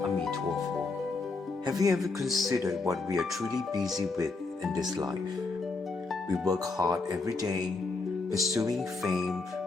Amituofo. Have you ever considered what we are truly busy with in this life? We work hard every day, pursuing fame,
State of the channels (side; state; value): right; quieter; 3.8 dB